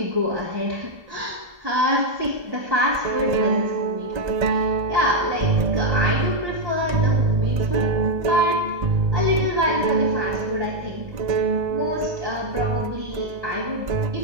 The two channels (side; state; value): left; late; 1.8 ms